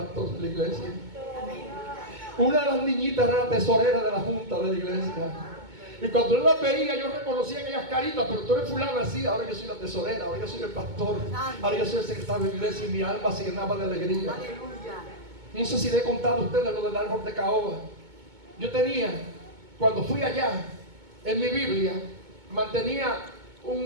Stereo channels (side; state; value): left; late; 2.2 ms